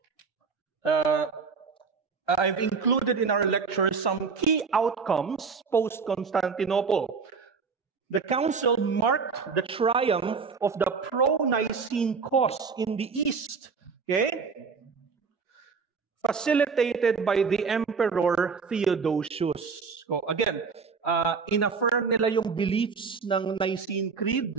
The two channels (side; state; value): left; quieter; 5.2 dB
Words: I've included in our lecture some key outcomes post-Constantinople. The council marked the triumph of the pro-Nicene cause in the East. Okay? Facilitated by the Emperor Theodosius. So again, inaffirm nila yung beliefs ng Nicene Creed